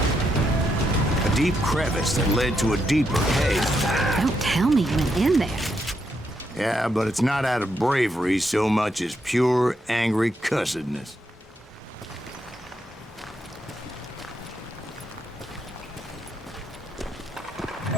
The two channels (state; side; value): normal; both; correlation 0.80